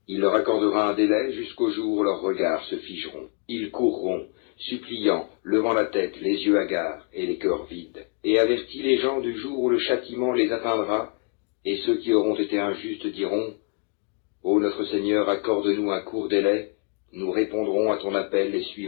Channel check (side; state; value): right; quieter; 35.6 dB